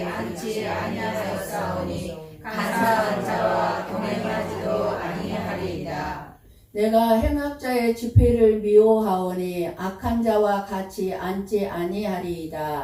앉지 아니하였사오니 간사한 자와 동행하지도 아니하리이다. 내가 행악자의 집회를 미워하오니 악한 자와 같이 앉지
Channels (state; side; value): identical; both; correlation 1.00